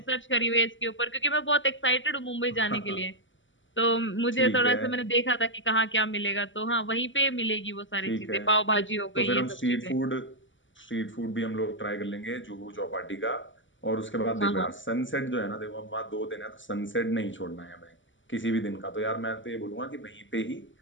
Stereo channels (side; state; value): right; late; 0.55 ms